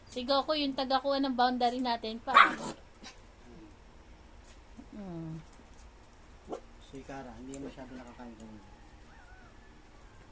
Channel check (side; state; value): both; identical; correlation 1.00